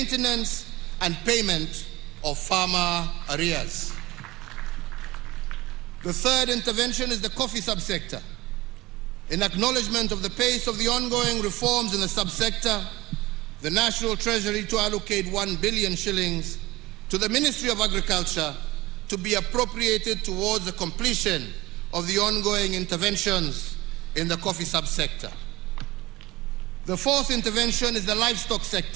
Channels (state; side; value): quieter; left; 19.6 dB